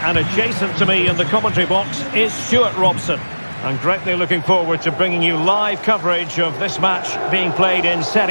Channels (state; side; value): inverted; both; correlation -1.00